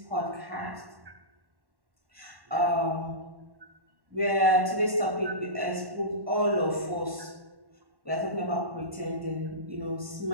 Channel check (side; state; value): left; late; 1.1 ms